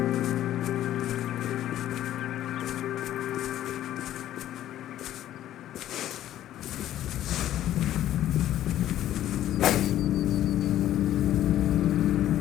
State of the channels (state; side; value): quieter; right; 12.5 dB